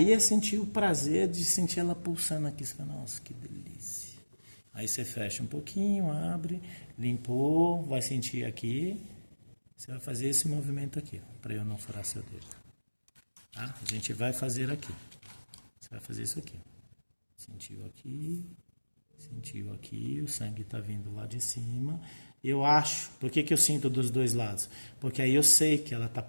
é sentir o prazer de sentir ela pulsando aqui. Você fala, nossa, que delícia. Aí você fecha um pouquinho, abre... Limpou, vai sentir aqui. Você vai fazer esse movimento aqui, para eu não furar seu dedo. Tá? A gente vai fazer aqui. Você vai fazer isso aqui. Sentiu aqui, o sangue está vindo lá de cima. Eu acho, por que eu sinto dos dois lados? Porque aí eu sei que ela está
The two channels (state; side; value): inverted; both; correlation -1.00